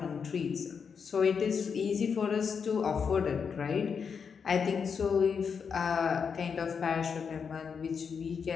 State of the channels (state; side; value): quieter; right; 6.3 dB